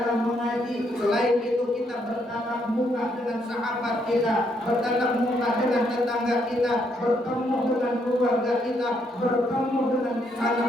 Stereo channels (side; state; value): both; normal; correlation 0.74